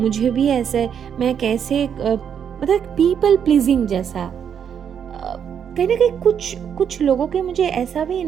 भी ऐसे, मैं कैसे, मतलब पीपल प्लीजिंग जैसा, कहीं ना कहीं कुछ लोगों के मुझे ऐसा भी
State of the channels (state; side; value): quieter; left; 8.1 dB